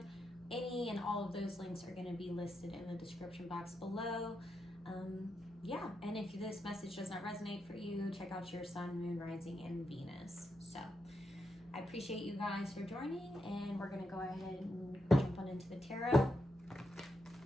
any and all of those links are going to be listed in the description box below. Yeah, and if this message does not resonate for you, check out your sun, moon, rising, and Venus. So I appreciate you guys for joining, and we're going to go ahead and jump on into the tarot.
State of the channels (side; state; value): both; normal; correlation 0.84